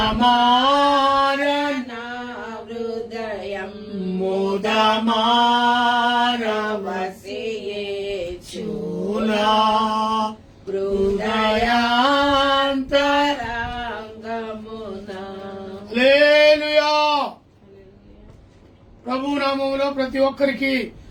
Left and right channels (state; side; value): identical; both; correlation 1.00